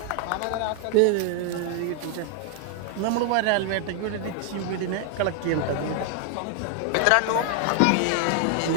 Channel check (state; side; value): different; both; correlation 0.00